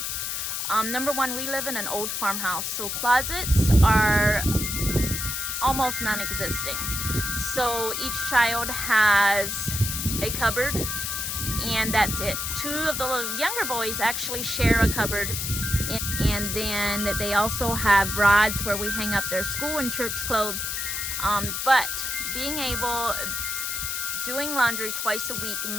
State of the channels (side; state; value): left; noise; hiss, 2 dB below the sound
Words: Number one, we live in an old farmhouse, so closets are almost non-existing. So each child has a cupboard, and that's it. 2 of the younger boys actually share a cupboard, and then they also have rods where we hang up their school and church clothes. But doing laundry twice a week